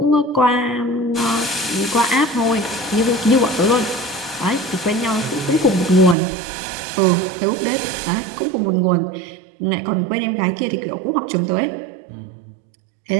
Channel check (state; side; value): drops out; left; at 6.2 s